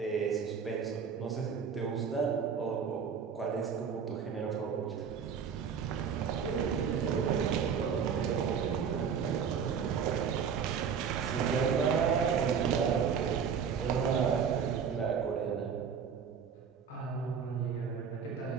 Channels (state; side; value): quieter; left; 6.8 dB